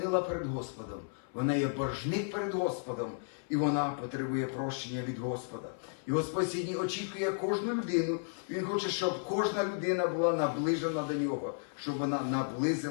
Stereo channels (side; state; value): right; silent; 55 dB below the other